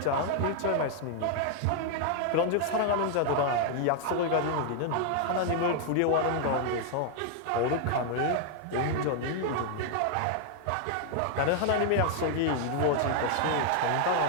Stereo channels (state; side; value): different; both; correlation 0.00